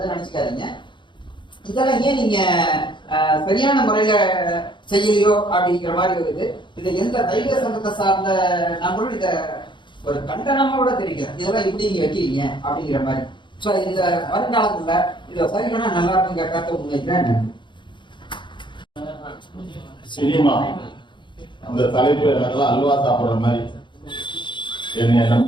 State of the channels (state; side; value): late; right; 0.23 ms